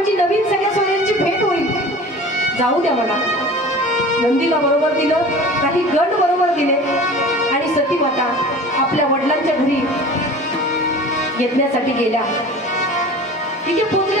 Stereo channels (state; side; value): normal; both; correlation 0.40